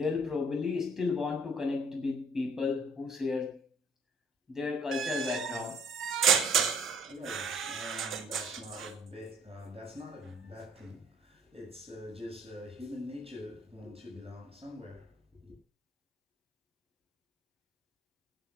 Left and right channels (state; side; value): normal; both; correlation 0.60